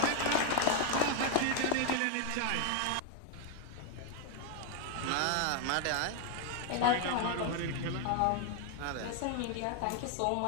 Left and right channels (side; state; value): both; different; correlation 0.01